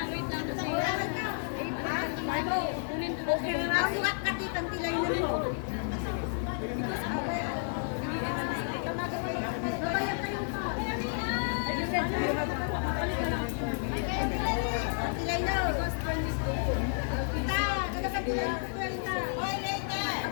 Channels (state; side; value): silent; right; digital silence